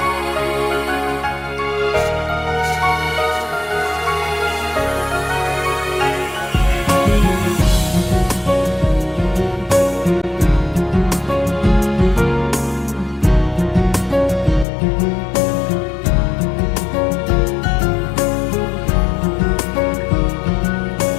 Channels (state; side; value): drops out; right; at 14.7 s